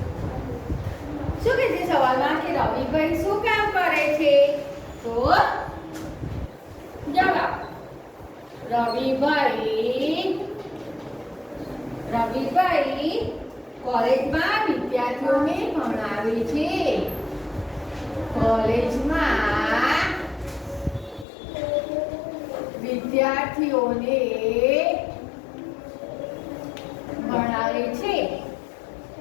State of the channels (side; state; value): right; drops out; at 21.2 s